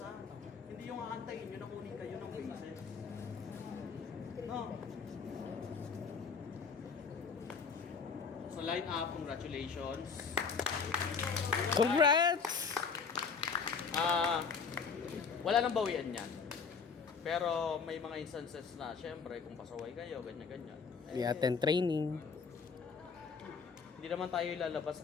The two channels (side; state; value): right; quieter; 5.5 dB